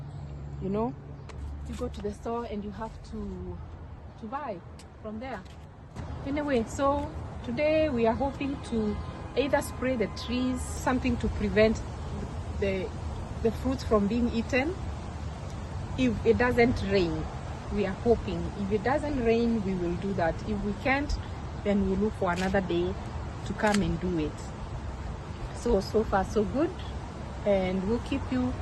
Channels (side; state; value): both; identical; correlation 1.00